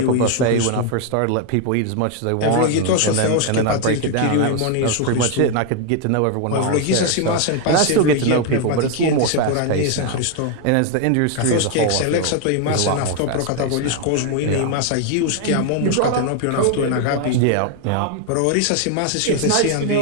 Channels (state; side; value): different; both; correlation 0.01